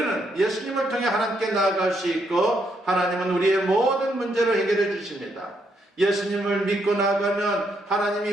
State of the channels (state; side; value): normal; both; correlation 0.76